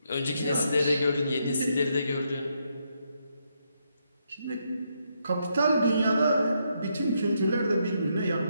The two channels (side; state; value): both; inverted; correlation -0.78